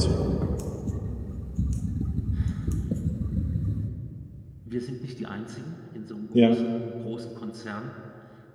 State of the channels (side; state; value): both; identical; correlation 1.00